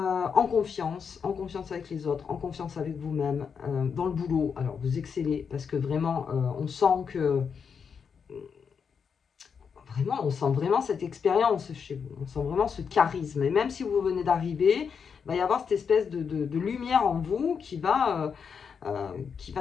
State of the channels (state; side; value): quieter; right; 6.4 dB